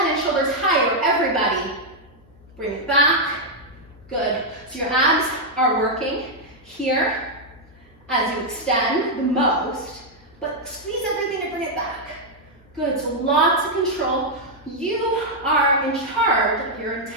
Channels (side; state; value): left; noise; hum, 25 dB below the sound